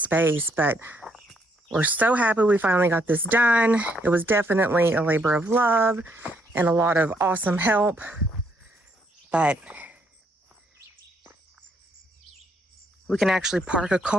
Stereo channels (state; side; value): normal; both; correlation 0.72